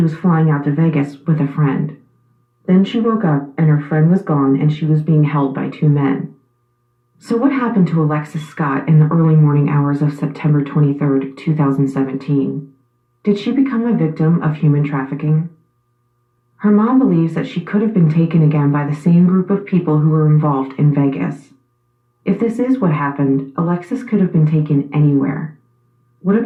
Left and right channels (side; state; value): both; identical; correlation 1.00